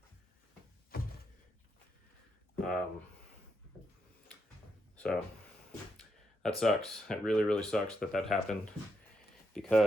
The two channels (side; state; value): both; normal; correlation 0.81